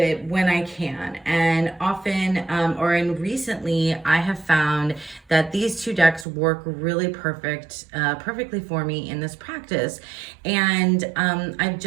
when I can. And often, recently, I have found that these two decks work really perfectly for me in this practice. And I've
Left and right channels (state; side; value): drops out; left; at 6.2 s